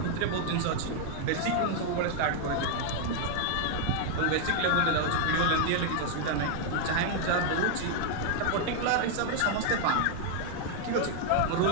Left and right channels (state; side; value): different; both; correlation 0.00